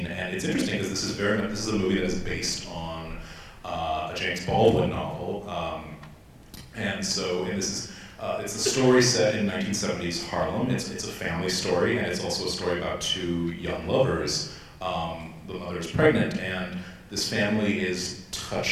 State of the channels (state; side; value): identical; both; correlation 1.00